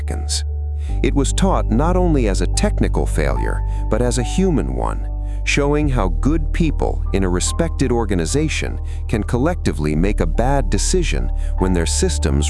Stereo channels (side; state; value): both; identical; correlation 1.00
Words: It was taught not only as a technical failure, but as a human one, showing how good people in a respected organization can collectively make a bad decision when their